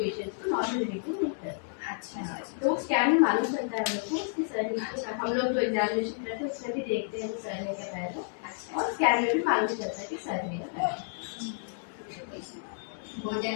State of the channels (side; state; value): right; silent; digital silence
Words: को नॉर्मल डिलीवरी होता है। अच्छा, तो स्कैन में मालूम चलता है हम लोग को उसके सर नीचे। हम लोग जो एग्जामिनेशन करते हैं उसमें भी देखते हैं वो सर है क्या पैर है, और स्कैन में भी मालूम चलता है कि सर है या पैर है।